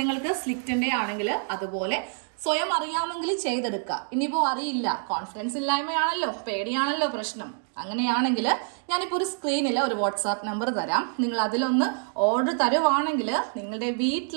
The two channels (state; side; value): silent; left; 60 dB below the other